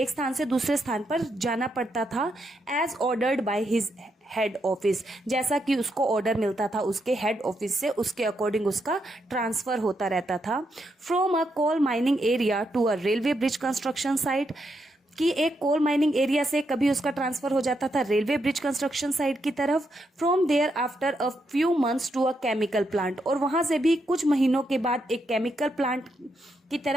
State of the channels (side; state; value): both; normal; correlation 0.81